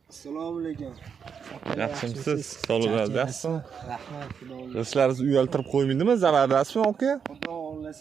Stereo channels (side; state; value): left; quieter; 6.8 dB